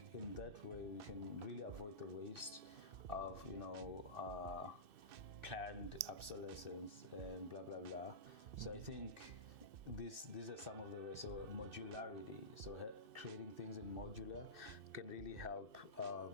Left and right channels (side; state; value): left; late; 2.6 ms